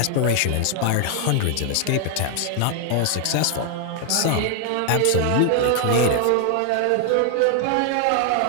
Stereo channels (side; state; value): both; different; correlation 0.00